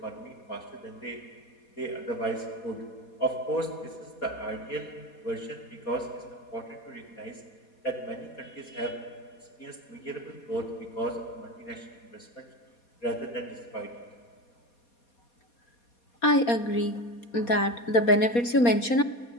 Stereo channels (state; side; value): late; right; 4.2 ms